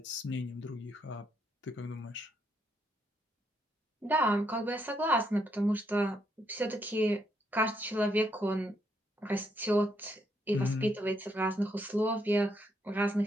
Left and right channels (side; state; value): both; normal; correlation 0.76